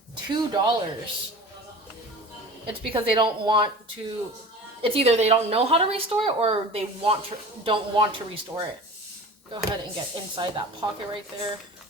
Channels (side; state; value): both; normal; correlation 0.38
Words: $2. It's because they don't want to... It's either they don't know how to restore it or they don't want to restore it. Go ahead and get inside that pocket right there.